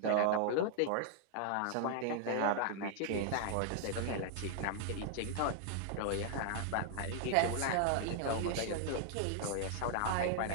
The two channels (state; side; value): different; both; correlation 0.00